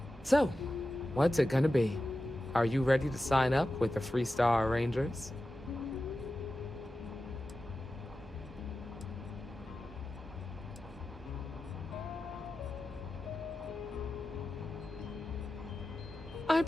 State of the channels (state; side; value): normal; both; correlation 0.93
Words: So, what's it gonna be? Are you ready to sign up with the Freestar Rangers? I